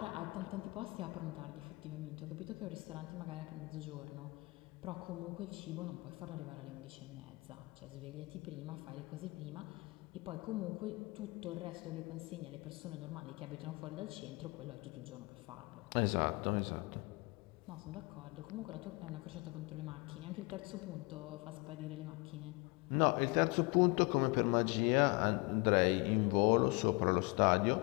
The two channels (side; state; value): right; quieter; 27.0 dB